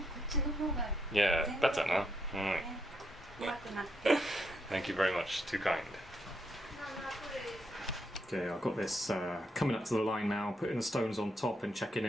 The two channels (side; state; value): both; normal; correlation 0.78